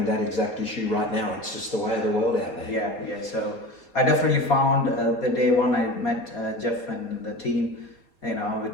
that exact issue right now. It's just the way of the world out there. Yeah. So I definitely found the day one I met Jeff and the team,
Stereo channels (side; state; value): right; late; 4.2 ms